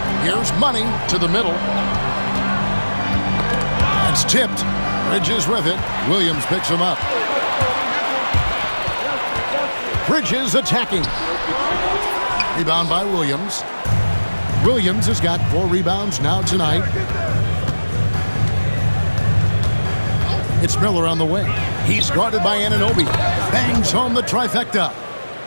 Here's Money to the middle. It's tipped. Bridges with it. Williams picks him up. Bridges attacking. Rebound by Williams. Williams has got 4 rebounds now tonight. It's Miller on the way. He's guarded by Anunoby. Bangs home the trifecta.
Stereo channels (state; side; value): inverted; both; correlation -1.00